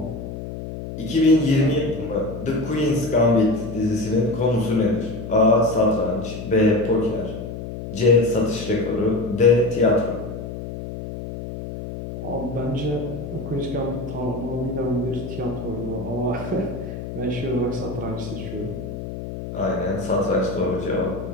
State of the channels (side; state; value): left; noise; hum, 8 dB below the sound